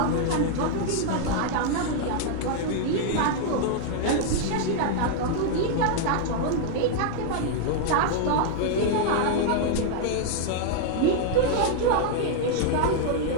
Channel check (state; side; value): different; both; correlation -0.01